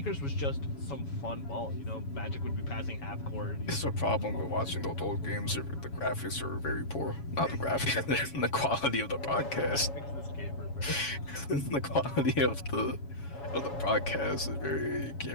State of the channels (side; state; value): right; late; 7.2 ms